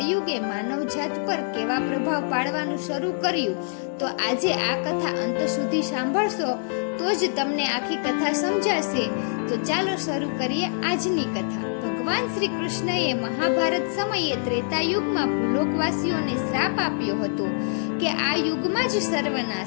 માનવજાત પર કેવા પ્રભાવ પાડવાનું શરૂ કર્યું, તો આજે આ કથા અંત સુધી સાંભળશો તો જ તમને આખી કથા સમજાશે. તો ચાલો શરૂ કરીએ આજની કથા. ભગવાન શ્રી કૃષ્ણએ મહાભારત સમયે ત્રેતાયુગમાં ભૂલોકવાસીઓને શ્રાપ આપ્યો હતો કે આ યુગમાં જ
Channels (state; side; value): silent; right; digital silence